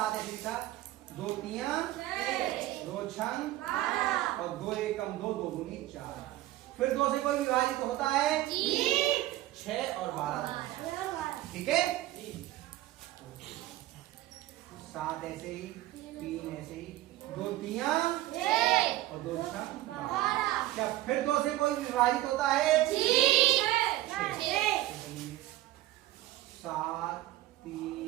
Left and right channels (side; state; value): left; quieter; 15.8 dB